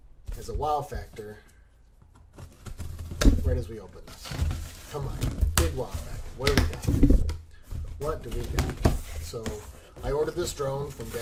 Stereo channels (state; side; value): identical; both; correlation 1.00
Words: as a wow factor right as we open this. Come on, big wow factor. What do we got? What do we got? So I ordered this drone from Get